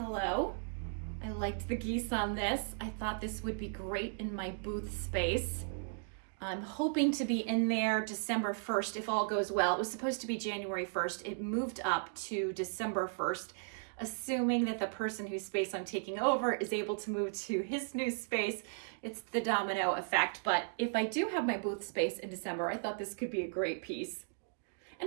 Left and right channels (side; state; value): left; silent; digital silence